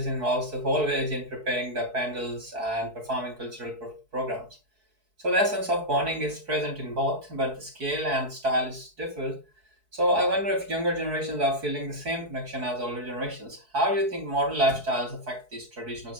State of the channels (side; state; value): left; late; 4.7 ms